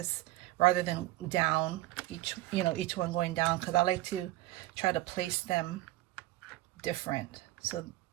rather than down, each one going down, because I like to try to place them different. So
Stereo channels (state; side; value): quieter; left; 17.2 dB